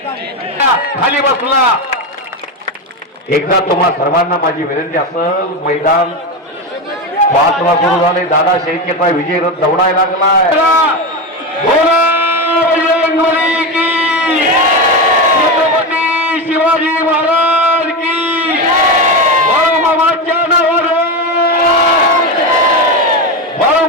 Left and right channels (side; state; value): both; normal; correlation 0.16